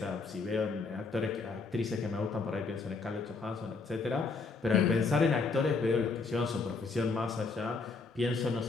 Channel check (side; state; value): right; quieter; 4.2 dB